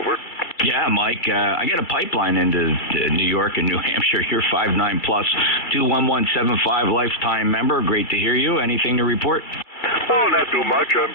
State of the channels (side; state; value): right; late; 2.2 ms